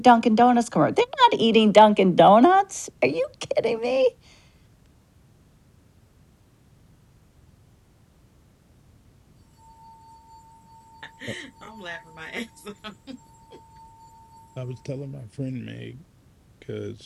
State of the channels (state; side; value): identical; both; correlation 1.00